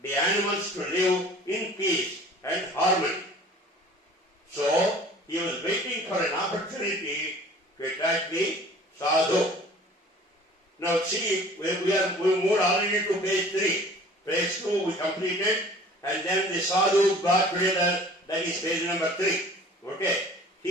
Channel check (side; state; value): both; normal; correlation 0.47